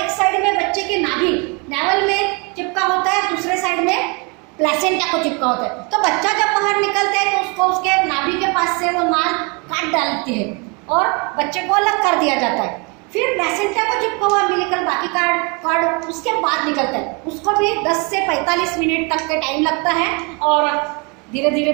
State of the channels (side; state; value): left; quieter; 31.5 dB